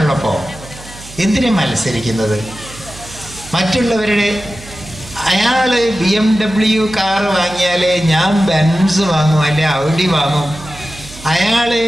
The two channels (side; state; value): right; noise; hum, 18 dB below the sound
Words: എന്തിനാ മത്സരിക്കുന്നത്? മറ്റുള്ളവരുടെ അയാൾ BMW കാറ് വാങ്ങിയാലേ ഞാൻ ബെൻസ് വാങ്ങും, അല്ലെ ഔഡി വാങ്ങും. അയാൾ